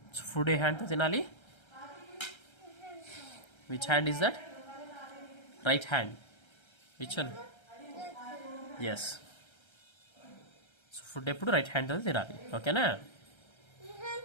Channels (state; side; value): late; right; 1.3 ms